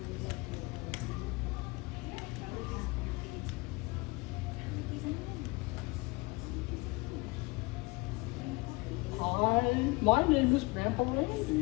Hi, my name is Grandpa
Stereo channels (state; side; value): quieter; right; 25.1 dB